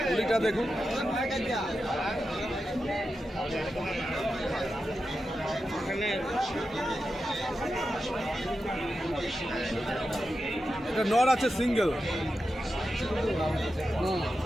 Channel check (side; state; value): both; normal; correlation 0.90